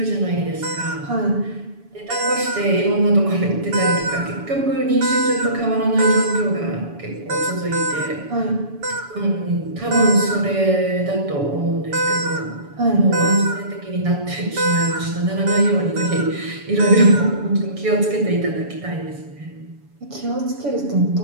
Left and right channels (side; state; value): left; late; 7.0 ms